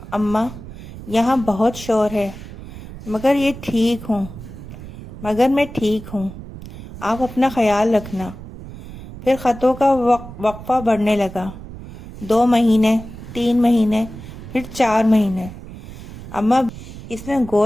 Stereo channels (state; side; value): noise; right; rumble, 13 dB below the sound